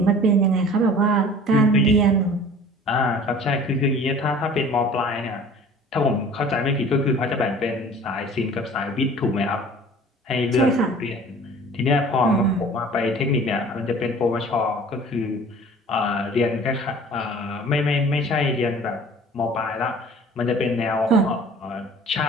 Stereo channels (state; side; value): normal; both; correlation 0.47